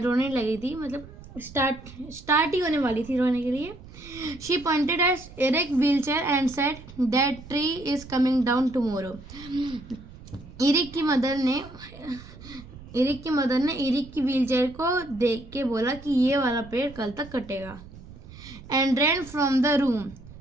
रोने लगी थी, मतलब स्टार्ट ही होने वाली थी रोने के लिए. She pointed at Eric's wheelchair and said that tree is coming down tomorrow. Eric की मदर ने एरिक की व्हीलचेयर को देख के बोला कि ये वाला पेड़ कल तक कटेगा. And ran from the room.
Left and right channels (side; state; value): right; noise; rumble, 17 dB below the sound